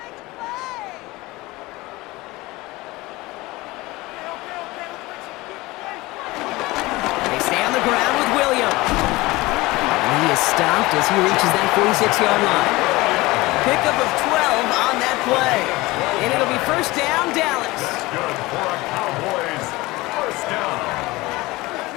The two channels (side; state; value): right; quieter; 20.8 dB